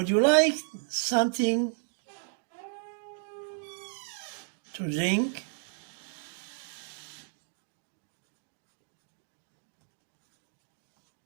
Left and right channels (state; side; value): silent; left; digital silence